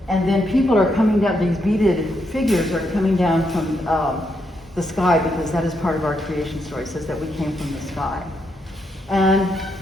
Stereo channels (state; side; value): normal; both; correlation 0.79